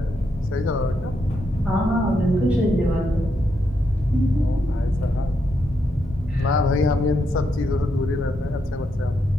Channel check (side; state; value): both; normal; correlation 0.80